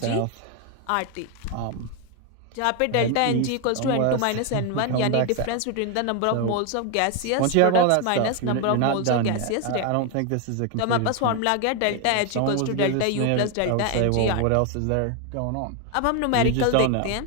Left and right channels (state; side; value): different; both; correlation 0.01